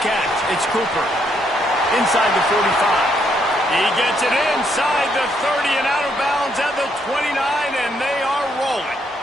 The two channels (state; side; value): normal; both; correlation 0.73